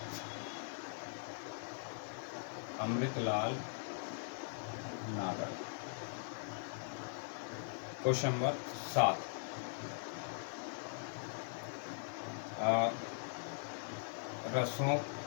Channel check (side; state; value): right; silent; digital silence